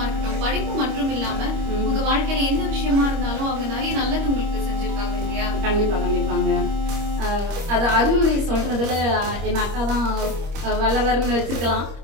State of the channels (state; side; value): late; left; 25 ms